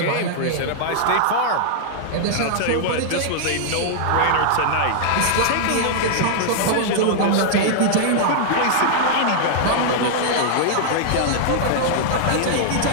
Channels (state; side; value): different; both; correlation -0.01